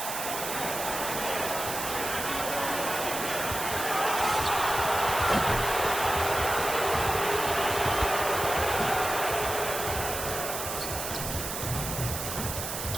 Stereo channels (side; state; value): right; noise; hiss, 5 dB below the sound